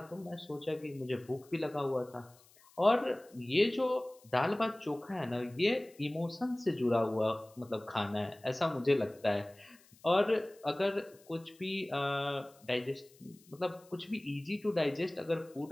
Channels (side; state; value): left; noise; hiss, 27 dB below the sound